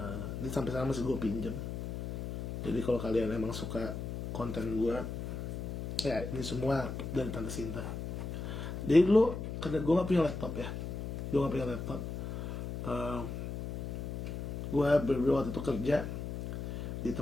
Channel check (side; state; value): left; noise; hum, 5 dB below the sound